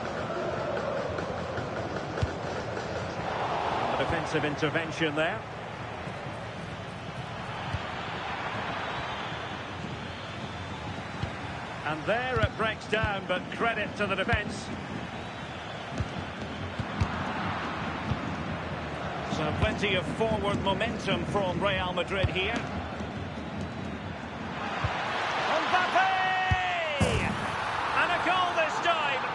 Defensive intervention there. And there it breaks down, but credit to the defence. So plenty of forward momentum from Real Madrid here. Mbappe! And a goal this time.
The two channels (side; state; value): both; identical; correlation 1.00